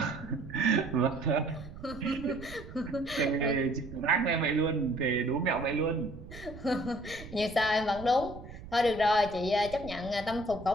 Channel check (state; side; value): noise; right; rumble, 14 dB below the sound